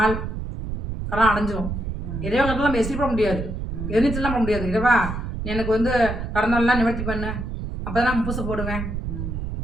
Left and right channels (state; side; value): noise; right; rumble, 5 dB below the sound